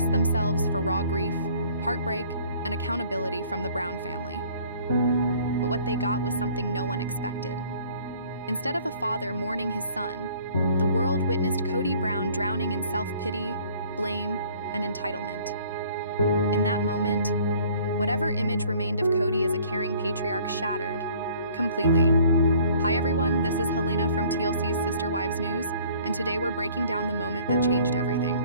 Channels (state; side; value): inverted; both; correlation -0.55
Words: themselves for raw grief, heartbreak, and accountability from the Brown family. But what they got was something no one expected. Instead of a father mourning his son, the world witnessed Kody Brown drowning in self-pity, blame, and entitlement. In that moment, whatever image remained of Kody as a caring patriarch shattered completely. Hi everyone, this is Helena from TLC's Sister Wives News, and today we're breaking down the moment that changed everything.